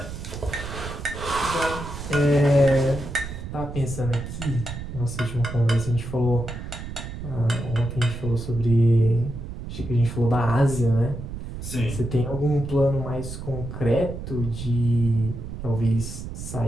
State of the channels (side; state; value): right; noise; rumble, 9 dB below the sound